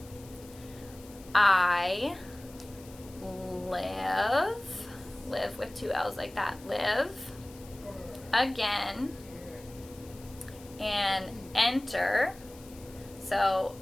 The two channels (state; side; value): noise; left; hiss, 21 dB below the sound